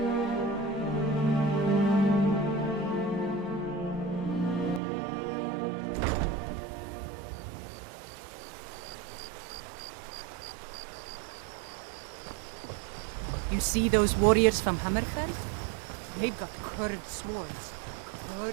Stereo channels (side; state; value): left; drops out; at 4.8 s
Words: You see those warriors from Hammerfell? They've got curved swords.